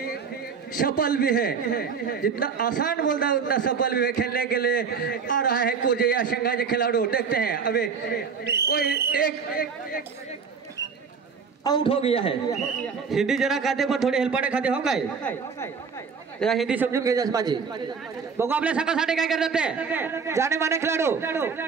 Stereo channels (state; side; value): quieter; left; 5.8 dB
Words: सफल भी है जितना आसान बोलता है उतना सफल भी है खेलने के लिए आ रहा है कुर्जेया संघाचे खिलाड़ू देखते हैं अभी कोई एक आउट हो गया है हिंदी जरा खाते पण थोडी हेल्पाने खाते हो काय जरा हिंदी समजून घ्यायचं माझी बघू आपल्या संघासाठी काय करतात ते जाणीमाने खेळाडू